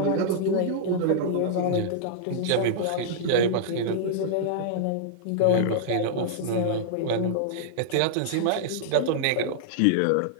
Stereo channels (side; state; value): both; different; correlation -0.02